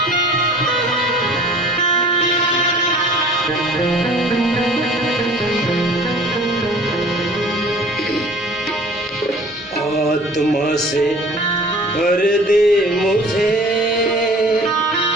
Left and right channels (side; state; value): both; normal; correlation 0.47